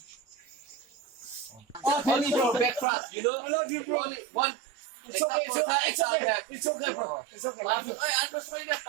Only bro back thrust, you know. I love you, bro. Only one. It's okay, it's okay, it's okay. It's okay, bro. It's okay. Love you.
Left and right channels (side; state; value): left; drops out; at 2.9 s